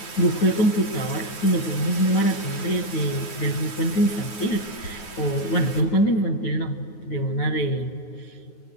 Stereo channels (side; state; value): right; late; 9.5 ms